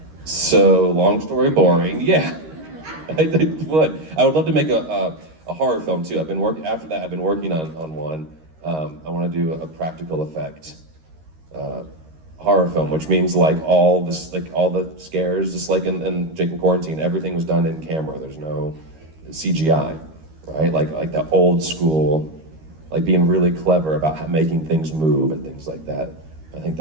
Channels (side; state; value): left; late; 13 ms